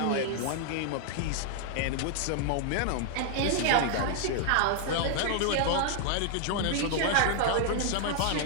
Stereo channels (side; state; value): both; different; correlation 0.00